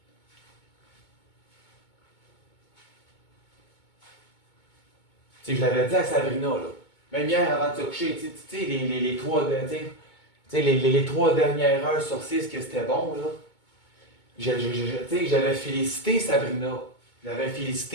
Tu sais, je l'avais dit à Sabrina, là. Même hier, avant de se coucher, tu sais, les 3 dernières heures sur 6 que c'était bon, là. J'avais félicité Sabrina. J'avais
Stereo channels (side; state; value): right; late; 2.2 ms